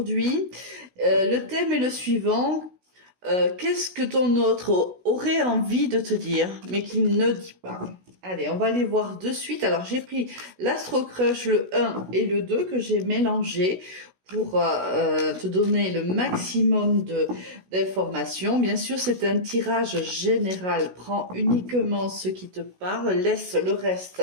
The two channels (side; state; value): left; late; 16 ms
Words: Le thème est le suivant. Qu'est-ce que ton autre aurait envie de te dire, mais qu'il ne dit pas? Allez, on va aller voir de suite. Alors, j'ai pris l'Astro Crush, le 1 et le 2 que j'ai mélangé pour te donner le maximum d'informations. Bien sûr, c'est un tirage général. Prends uniquement ce qui te parle, laisse le reste